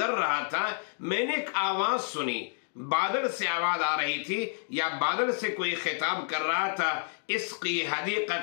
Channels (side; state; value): right; silent; digital silence